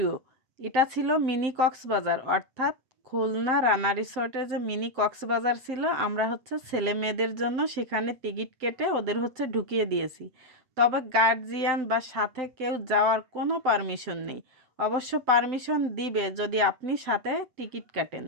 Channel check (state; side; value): late; left; 7.8 ms